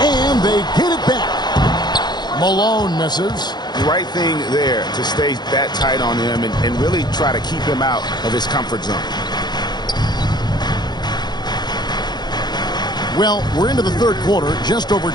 And they get it back. Malone misses. The right thing there to stay that tight on him and really try to keep him out of his comfort zone. Well, we're into the third quarter, just over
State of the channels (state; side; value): late; right; 0.21 ms